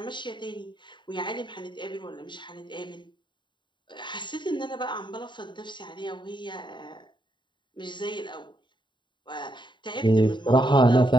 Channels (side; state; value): right; late; 0.23 ms